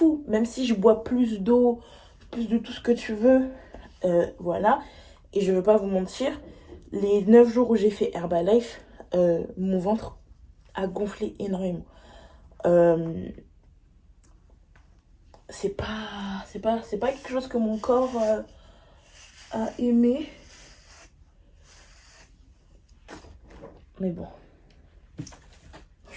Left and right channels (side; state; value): both; identical; correlation 1.00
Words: Même si je bois plus d'eau, plus de tout ce que tu veux, voilà. Et je veux pas vous mentir, les 9 jours où j'ai fait Herbalife, mon ventre a gonflé énormément. C'est pas quelque chose que mon corps a aimé. Mais bon.